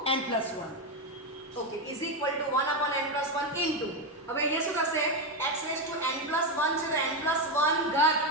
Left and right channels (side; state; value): both; normal; correlation 0.09